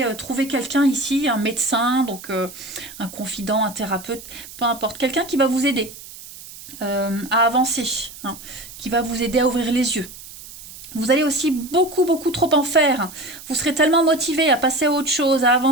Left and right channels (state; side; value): noise; right; hiss, 16 dB below the sound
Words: trouver quelqu'un ici, un médecin, donc un confident, un thérapeute, peu importe. Quelqu'un qui va vous aider à avancer, hein, qui va vous aider à ouvrir les yeux. Vous allez aussi beaucoup, beaucoup trop en faire. Vous serez tellement motivé à passer à autre chose, à